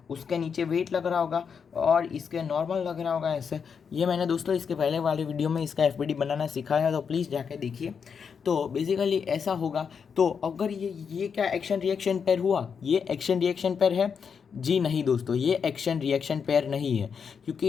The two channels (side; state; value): right; quieter; 6.5 dB